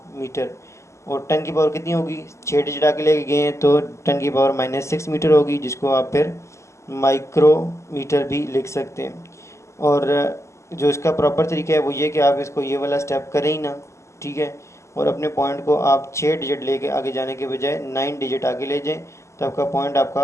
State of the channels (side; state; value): right; late; 0.14 ms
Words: मीटर। और 10 की पावर कितनी होगी, 6 डिजिट आगे लेके गए हैं तो 10 की पावर -6 मीटर होगी, जिसको आप फिर माइक्रोमीटर भी लिख सकते हैं। और जो इसका प्रॉपर तरीका है वो ये कि आप इसको ये वाला स्टेप करें ही ना, ठीक है, और अपने पॉइंट को आप 6 डिजिट लेके आगे जाने के बजाय 9 डिजिट आगे ले जाएं तो आपका पॉइंट